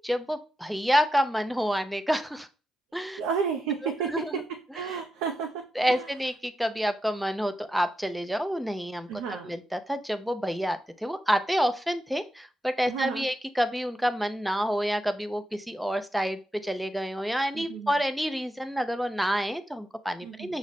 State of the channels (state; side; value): normal; both; correlation 0.87